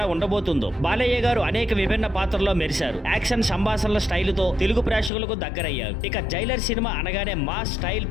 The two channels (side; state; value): right; drops out; at 5.1 s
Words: ఉండబోతుందో. బాలయ్య గారు అనేక విభిన్న పాత్రల్లో మెరిశారు. యాక్షన్ సంభాషణల స్టైలుతో తెలుగు ప్రేక్షకులకు దగ్గరయ్యారు. ఇక జైలర్ సినిమా అనగానే mass style,